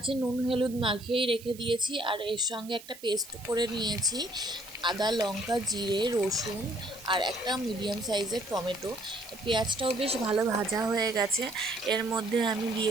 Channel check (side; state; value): right; noise; hiss, 18 dB below the sound